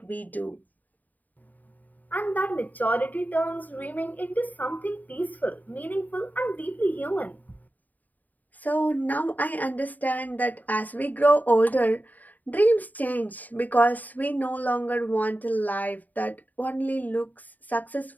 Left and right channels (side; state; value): right; late; 0.082 ms